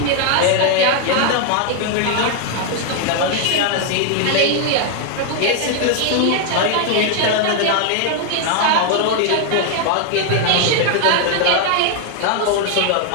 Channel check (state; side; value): different; both; correlation 0.00